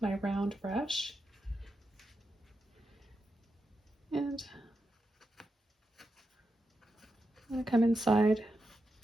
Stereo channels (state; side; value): normal; both; correlation 0.87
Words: my round brush. And I'm going to come inside